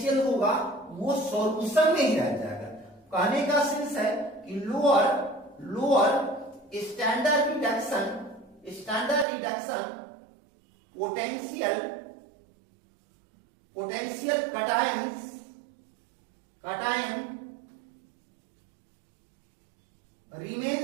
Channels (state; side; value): drops out; left; at 9.2 s